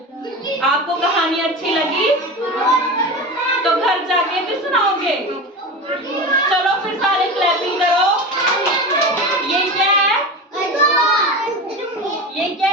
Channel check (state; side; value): normal; both; correlation 0.27